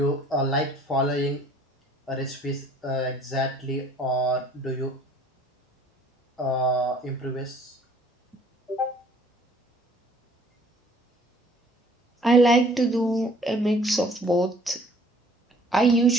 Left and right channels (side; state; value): both; normal; correlation 0.56